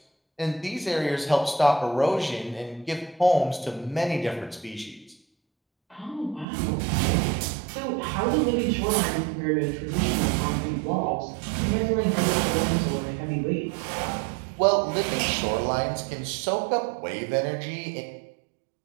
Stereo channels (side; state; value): left; drops out; at 6.5 s